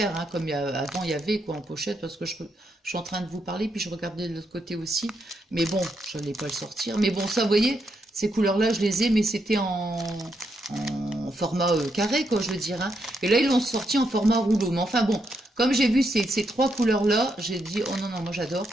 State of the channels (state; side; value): normal; both; correlation 0.80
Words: hein, comme avant il y avait quoi en pochette, parce que je suis en train de vous parler, puis je regardais de l'autre côté aussi. Mais bon, je n'allais pas le sortir. Mais bon, ça, vous voyez, ces couleurs-là, je les ai, mais c'était en format carré, quoi, je veux dire. Hein. Et là, ils l'ont sorti en format rouleau. Mais enfin bon, comme j'ai vu ces 3 couleurs-là, j'ai dit, oh non, non, moi j'adore.